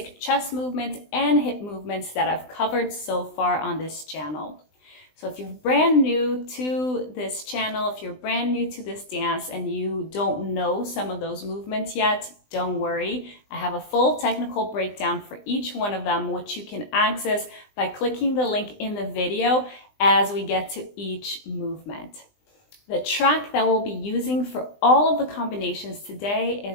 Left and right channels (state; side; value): late; right; 20 ms